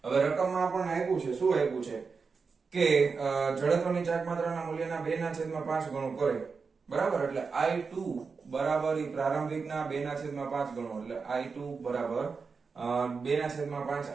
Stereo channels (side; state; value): left; quieter; 5.0 dB